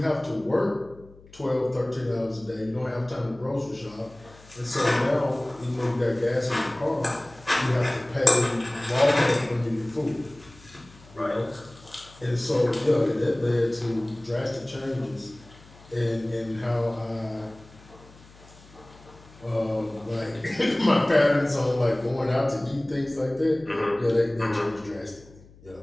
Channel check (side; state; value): left; noise; hum, 24 dB below the sound